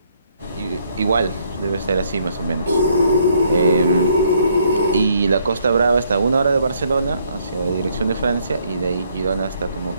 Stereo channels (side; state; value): both; inverted; correlation -0.68